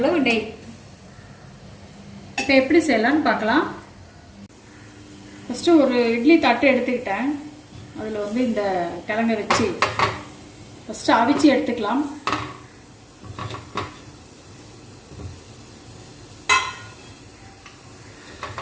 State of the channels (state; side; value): identical; both; correlation 1.00